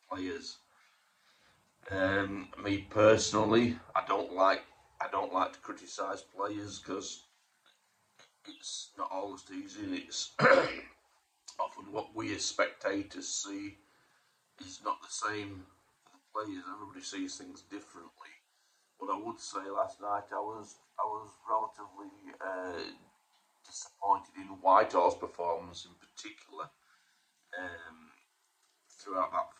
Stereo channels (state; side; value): identical; both; correlation 1.00